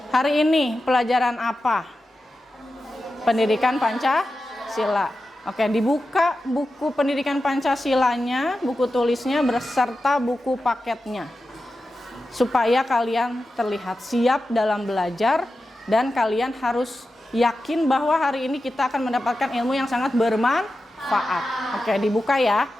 Hari ini pelajaran apa? Pendidikan Pancasila. Oke, dibuka buku pendidikan Pancasilanya, buku tulisnya beserta buku paketnya. Supaya kalian terlihat siap dalam belajar. Dan kalian harus yakin bahwa hari ini kita akan mendapatkan ilmu yang sangat bermanfaat. Oke, dibuka ya.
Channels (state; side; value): normal; both; correlation 0.92